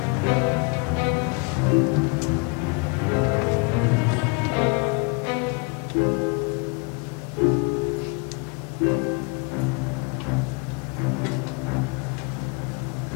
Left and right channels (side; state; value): right; quieter; 31.8 dB